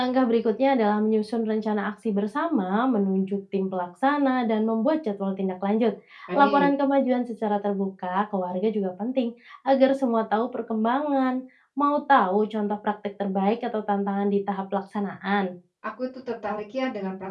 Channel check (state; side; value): identical; both; correlation 1.00